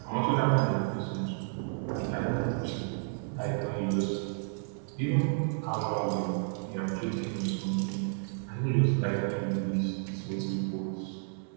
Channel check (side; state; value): left; silent; digital silence